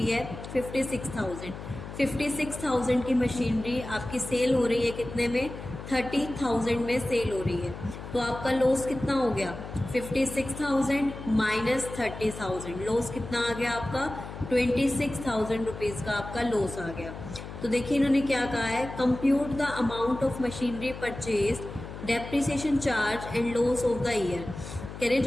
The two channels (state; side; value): noise; left; hum, 11 dB below the sound